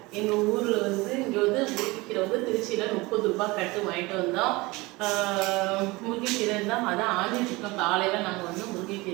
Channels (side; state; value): left; quieter; 22.7 dB